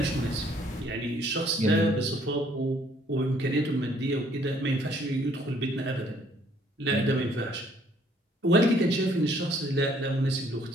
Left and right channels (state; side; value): normal; both; correlation 0.63